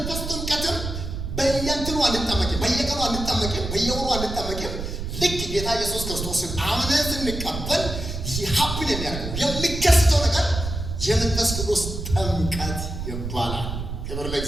ጥምቀትም በየእንትኑ አንጠመቅም፣ በየቀኑ አንጠመቅም፣ በየወሩ አንጠመቅም። ልክ ጌታ ኢየሱስ ክርስቶስን አምነን ስንቀበል ሀፕን የሚያደርገው የሚከሰተው ነገር የመንፈስ ቅዱስ ጥምቀት ይባላል። ክብር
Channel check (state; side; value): noise; right; rumble, 6 dB below the sound